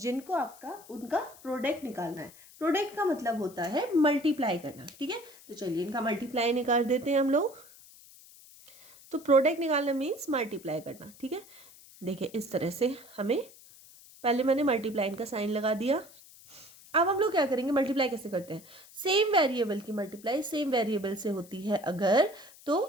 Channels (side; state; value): left; noise; hiss, 22 dB below the sound